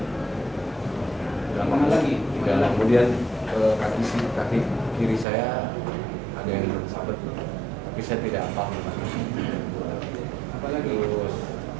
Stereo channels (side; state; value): left; drops out; at 5.2 s